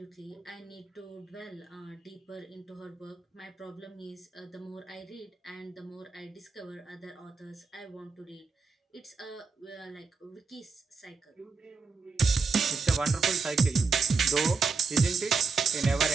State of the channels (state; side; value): quieter; left; 4.8 dB